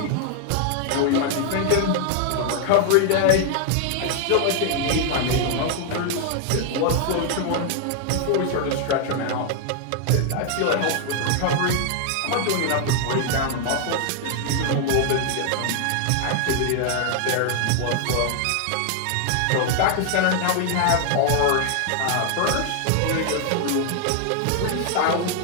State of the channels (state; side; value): different; both; correlation 0.00